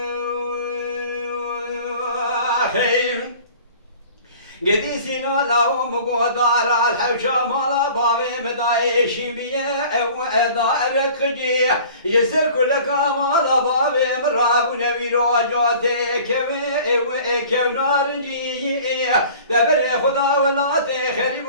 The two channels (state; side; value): inverted; both; correlation -0.46